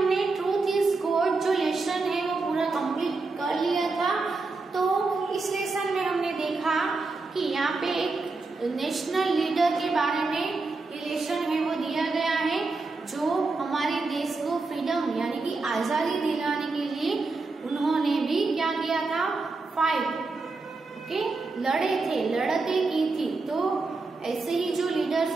Truth is Good जो lesson है वो पूरा complete कर लिया था। तो इस लेसन में हमने देखा कि यहाँ पे एक नेशनल लीडर के बारे में लेसन है वो दिया गया है जो हमारे देश को फ्रीडम यानी कि आजादी दिलाने के लिए उन्होंने भी क्या किया था, फाइट लड़े थे, लड़ते की थी। तो ऐसे ही जो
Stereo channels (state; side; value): quieter; left; 3.8 dB